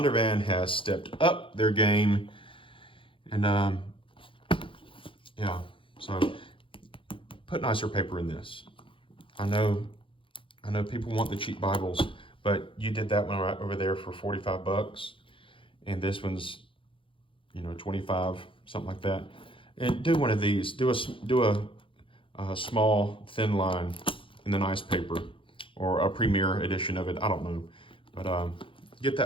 has stepped up their game, and yeah, so put nicer paper in this. I know people want the cheap Bibles, but you did that one right over there for 45 bucks, and this one's 25, something like that. And do one of these. Do a small thin line in the nice paper, or a premier edition of it. I don't know. But get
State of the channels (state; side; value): late; right; 0.25 ms